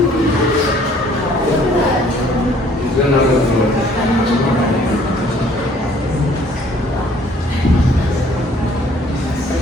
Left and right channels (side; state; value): both; normal; correlation 0.58